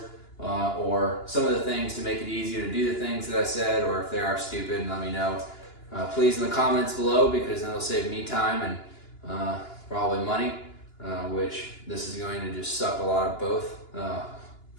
or some of the things to make it easier to do the things that I said, or if they are stupid, let me know. Please in the comments below, because then it'll save me time and probably money, which this is going to just suck a lot of both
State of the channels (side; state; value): right; late; 2.9 ms